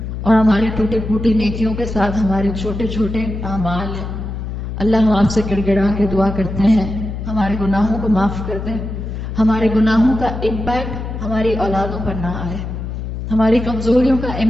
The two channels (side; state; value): left; noise; hum, 6 dB below the sound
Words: اور ہماری ٹوٹی پھوٹی نیکیوں کے ساتھ ہمارے چھوٹے چھوٹے اعمال ہیں۔ اللہ ہم آپ سے گڑ گڑا کے دعا کرتے ہیں ہمارے گناہوں کو معاف کر دیں، ہمارے گناہوں کا امپیکٹ ہماری اولادوں پر نہ آئے، ہماری کمزوریوں کا